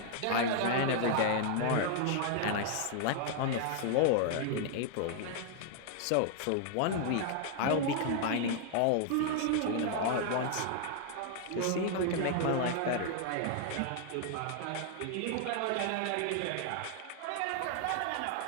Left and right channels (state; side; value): different; both; correlation 0.00